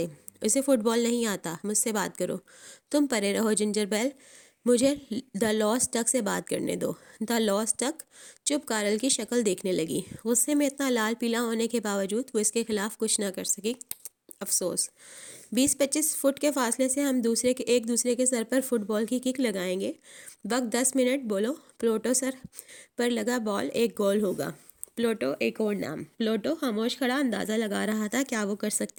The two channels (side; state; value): both; identical; correlation 1.00